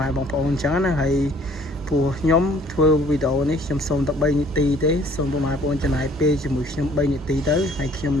៉ែបងប្អូនអញ្ចឹងណាហើយព្រោះខ្ញុំធ្វើវីដេអូនេះខ្ញុំសូមតែ3នាទីទេសូមពុកម៉ែបងប្អូនចំណាយពេលជាមួយខ្ញុំ3នាទីទៅហើយខ្ញុំ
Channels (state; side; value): normal; both; correlation 0.57